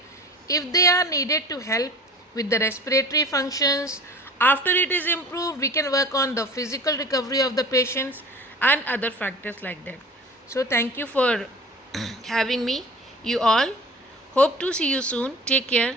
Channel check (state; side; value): normal; both; correlation 0.40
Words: if they are needed to help with the respiratory functions. After it is improved, we can work on the physical recovery of the patients and other factors like that. So thank you for having me, you all. Hope to see you soon. Take care.